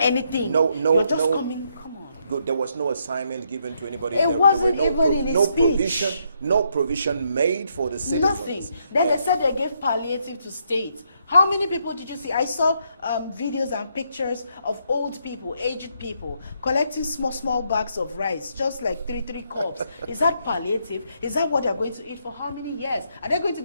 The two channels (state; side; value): inverted; both; correlation -0.76